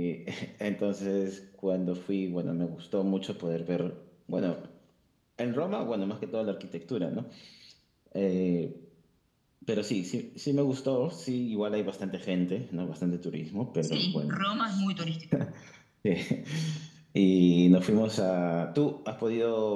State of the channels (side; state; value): both; identical; correlation 1.00